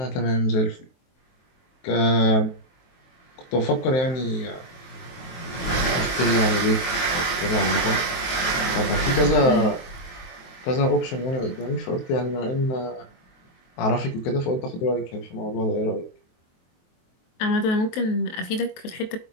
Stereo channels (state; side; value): late; right; 23 ms